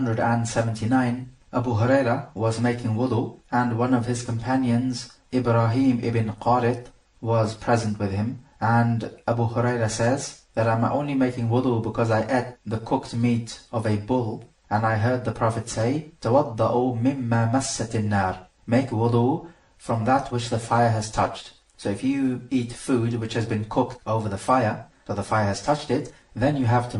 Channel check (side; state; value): both; identical; correlation 1.00